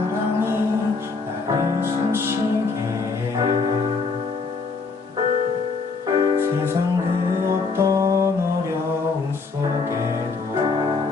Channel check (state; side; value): quieter; right; 4.5 dB